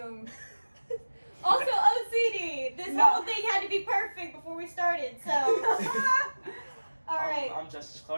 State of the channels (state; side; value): inverted; both; correlation -1.00